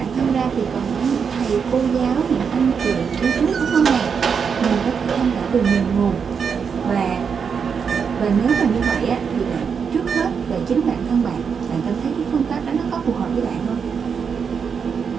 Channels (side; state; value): left; quieter; 6.4 dB